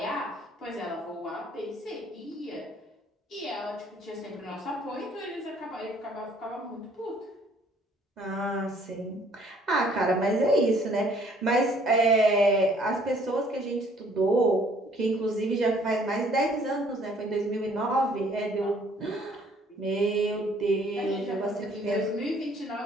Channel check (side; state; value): both; normal; correlation 0.60